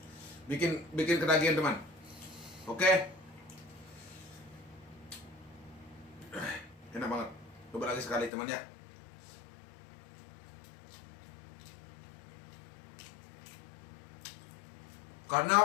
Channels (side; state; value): right; drops out; at 8.3 s